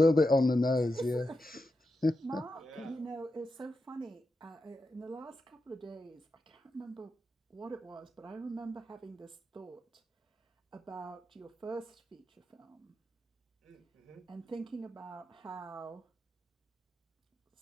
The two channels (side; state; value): both; normal; correlation 0.88